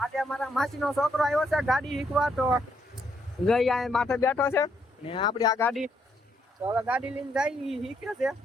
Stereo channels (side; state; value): both; normal; correlation 0.74